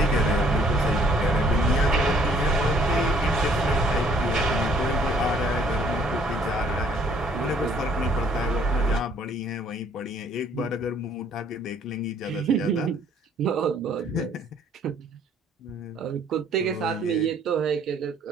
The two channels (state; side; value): normal; both; correlation 0.61